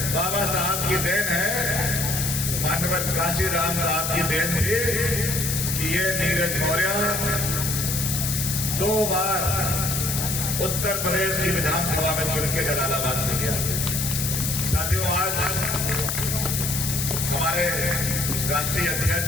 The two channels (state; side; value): noise; left; hiss, 1 dB below the sound